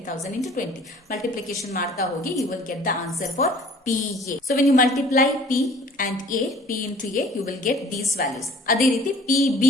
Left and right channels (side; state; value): both; normal; correlation 0.51